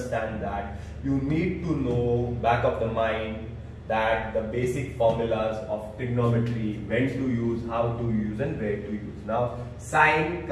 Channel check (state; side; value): identical; both; correlation 1.00